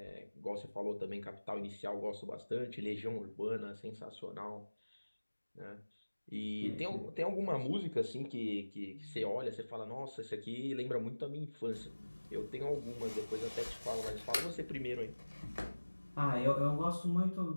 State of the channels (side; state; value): both; inverted; correlation -1.00